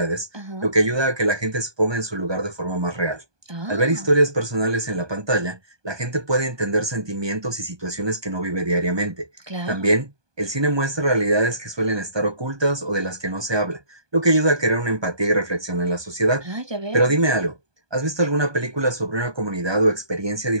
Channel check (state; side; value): late; left; 1.2 ms